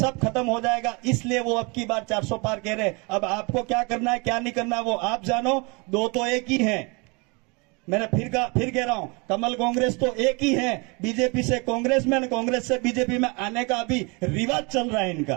खत्म हो जाएगा। इसलिए वो अब की बार 400 पार कह रहे हैं। अब आपको क्या करना है क्या नहीं करना है वो आप जानो, दो तो एक ही हैं। मैंने फिर कह रहा हूं, कमल कांग्रेस तो एक ही है, बीजेपी से कांग्रेस में, कांग्रेस से बीजेपी में आने का अभी रिवाज चल रहा है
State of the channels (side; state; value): left; quieter; 29.3 dB